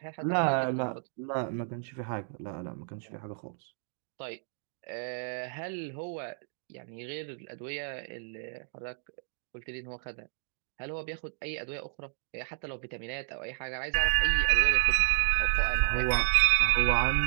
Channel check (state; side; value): silent; left; digital silence